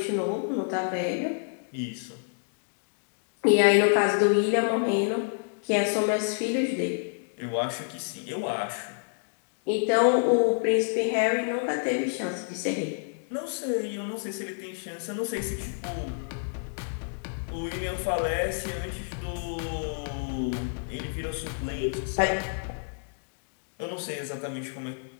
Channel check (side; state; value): right; silent; digital silence